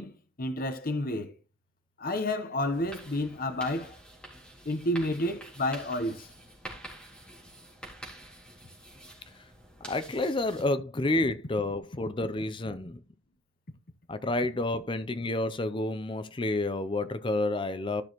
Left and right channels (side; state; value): both; normal; correlation 0.48